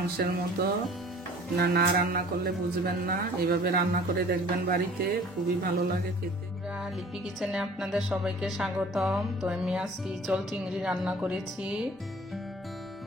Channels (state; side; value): normal; both; correlation 0.49